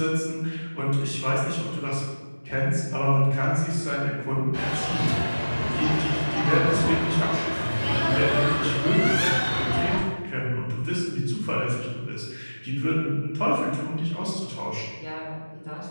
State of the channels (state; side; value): inverted; both; correlation -1.00